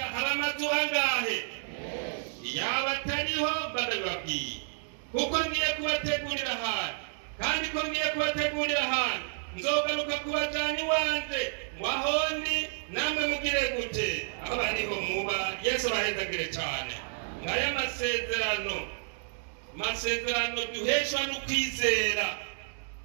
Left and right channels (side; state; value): left; silent; digital silence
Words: hari amazu angahe? Yaba atariho barababwiye, kuko ngiye kubategurira ahantu, kandi ko ngiye kubategurira ahantu nzogaruka kubajana iwanje, wahondi namwe mugire gute? Aho bariho muba. Yesu abahezagire cyane. Ngaya masezerano duheshwa n'ukwizera.